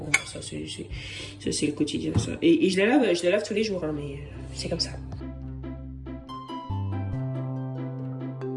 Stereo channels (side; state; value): both; identical; correlation 1.00